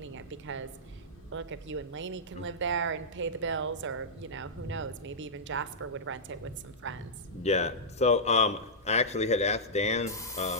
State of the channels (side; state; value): both; normal; correlation -0.11